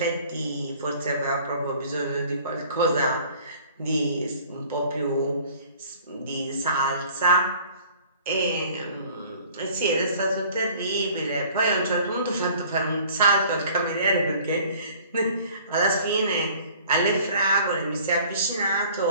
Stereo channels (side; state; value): both; inverted; correlation -0.52